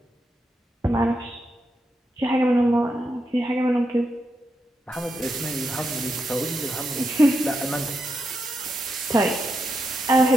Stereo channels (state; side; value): normal; both; correlation 0.84